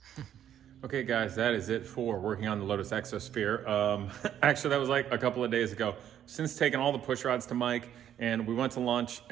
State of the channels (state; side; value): quieter; left; 10.3 dB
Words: Okay guys, that is it for working on the Lotus Exosphere. Actually, that was like a couple of days ago. Since taking all the push rods to Mike, and we went to lunch,